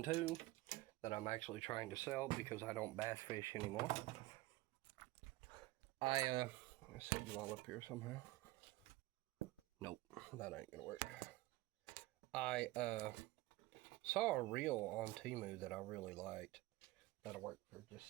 2 that I'm actually trying to sell because I don't bass fish anymore. Let's set you all up here somehow. Nope, that ain't gonna work. I saw a reel on Temu that I really liked. That'll work for just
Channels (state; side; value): quieter; left; 18.8 dB